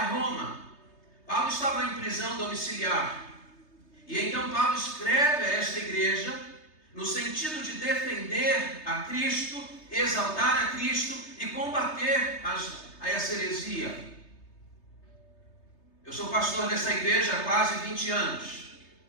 Roma. Paulo estava em prisão domiciliar. E então Paulo escreve a esta igreja no sentido de defender a Cristo, exaltar a Cristo e combater a essa heresia. Eu sou pastor dessa igreja há quase 20 anos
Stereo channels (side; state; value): right; late; 3.3 ms